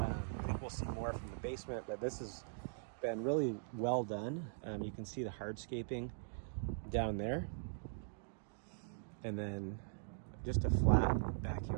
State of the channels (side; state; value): left; silent; digital silence